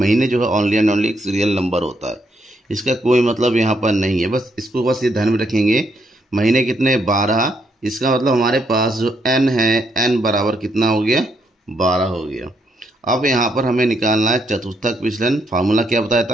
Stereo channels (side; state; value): both; normal; correlation 0.75